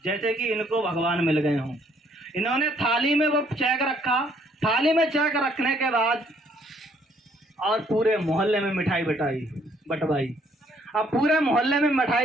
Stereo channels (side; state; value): both; normal; correlation 0.66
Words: जैसे कि इनको भगवान मिल गए हों। इन्होंने थाली में वो चेक रखा, थाली में चेक रखने के बाद और पूरे मोहल्ले में मिठाई बटवाई। अब पूरे मोहल्ले में